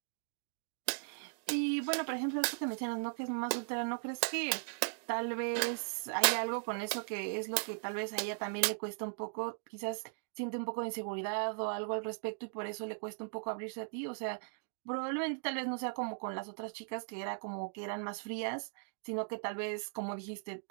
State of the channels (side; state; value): left; silent; digital silence